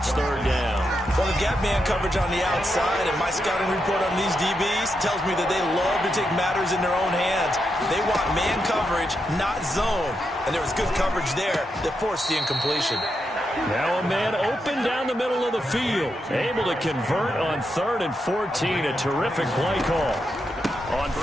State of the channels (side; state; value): both; normal; correlation 0.84